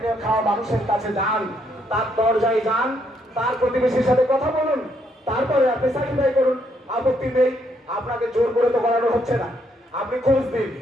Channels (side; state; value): both; normal; correlation 0.72